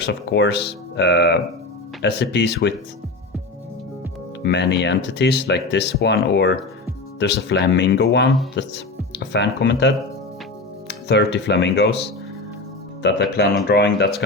of course. SCPs with many entities, like this one, or there's a flamingo one that a fan commented. 30 flamingos that I plan on drawing. That's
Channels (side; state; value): right; quieter; 3.1 dB